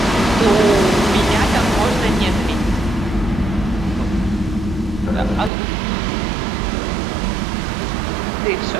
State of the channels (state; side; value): drops out; left; at 5.5 s